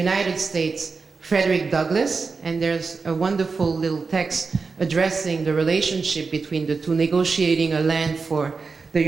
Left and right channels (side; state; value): left; quieter; 4.6 dB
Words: States, Frederick Douglass, and there's a wonderful little text addressing the relationship between the two, negotiating a land for the